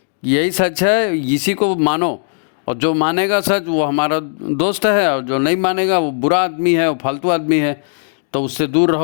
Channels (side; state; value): right; silent; digital silence